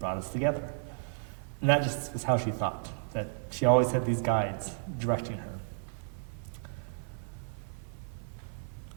us together. And that just was how she thought, that she always had these guides directing her.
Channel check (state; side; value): silent; left; 56 dB below the other